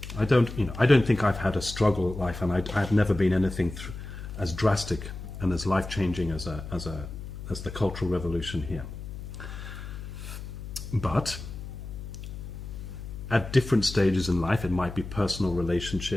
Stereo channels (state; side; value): noise; left; hum, 10 dB below the sound